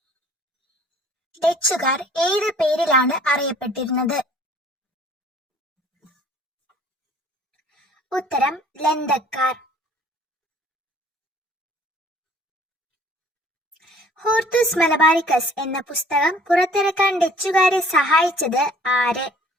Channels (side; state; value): both; normal; correlation 0.54